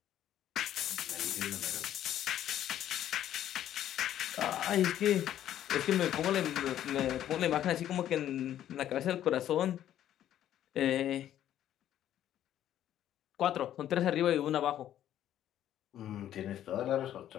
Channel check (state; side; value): quieter; right; 11.5 dB